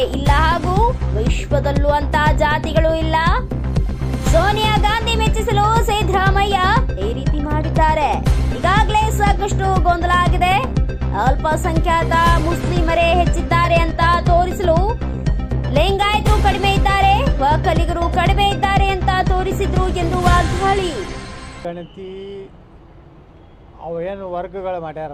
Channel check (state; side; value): identical; both; correlation 1.00